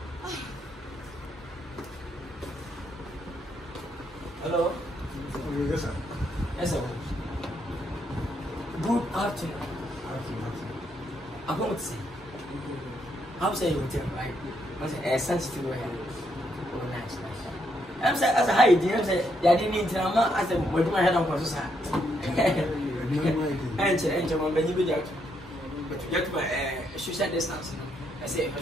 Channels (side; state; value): both; normal; correlation 0.76